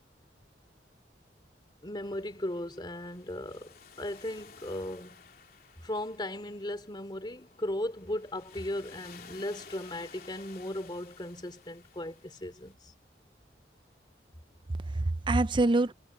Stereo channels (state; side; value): normal; both; correlation 0.70